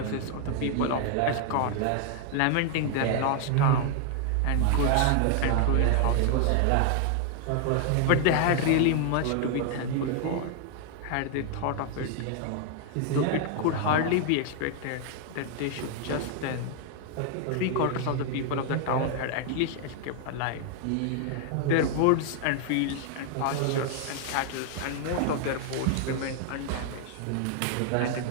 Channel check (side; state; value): both; different; correlation 0.00